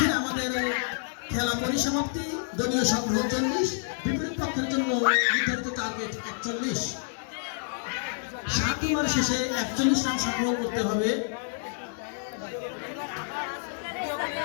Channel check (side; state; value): right; silent; digital silence